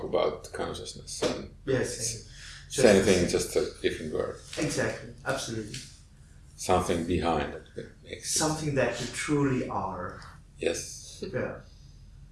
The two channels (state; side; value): identical; both; correlation 1.00